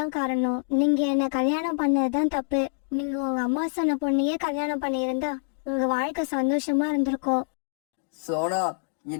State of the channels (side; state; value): right; silent; digital silence